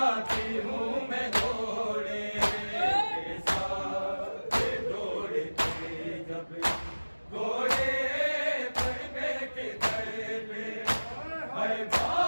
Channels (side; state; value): both; inverted; correlation -1.00